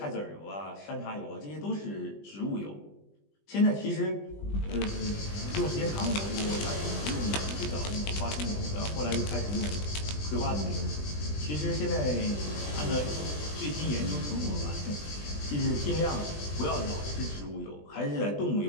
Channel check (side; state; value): right; late; 20 ms